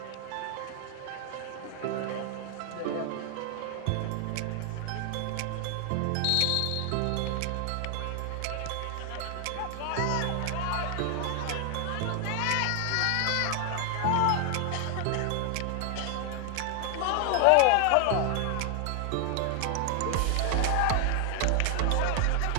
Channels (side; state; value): both; different; correlation 0.00